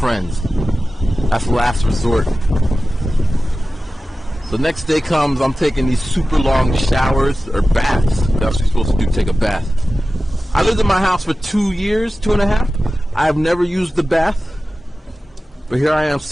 That's last resort. The next day comes, I'm taking these super long showers, or baths. That's what you're supposed to do, take a bath. I lived in my house for 2 years, 2.5. I have never used the bath. But here I am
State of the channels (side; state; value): both; normal; correlation 0.95